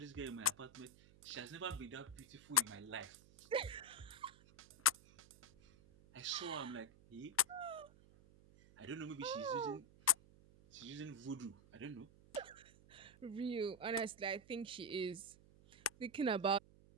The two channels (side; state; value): right; noise; hum, 23 dB below the sound